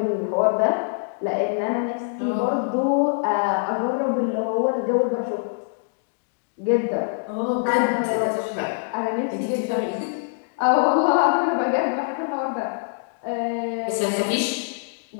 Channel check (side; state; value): right; silent; digital silence